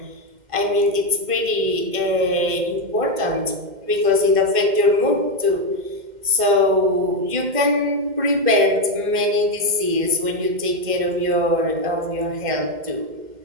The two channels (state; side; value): late; left; 2.1 ms